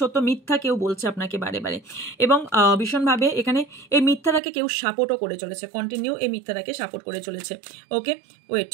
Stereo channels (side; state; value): left; drops out; at 4.4 s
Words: মিথ্যা কেউ বলছে আপনাকে বারে বারে এবং ভীষণভাবে এখানে এই মিথ্যাটাকে কেউ সাপোর্টও করে চলেছে, কন্টিনিউ এই মিথ্যাটাকে সাপোর্ট করে চলেছে। ওকে, ওয়েট,